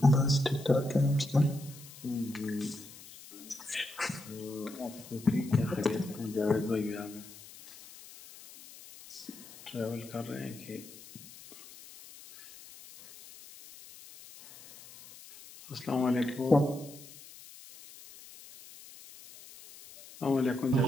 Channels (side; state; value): left; noise; hiss, 18 dB below the sound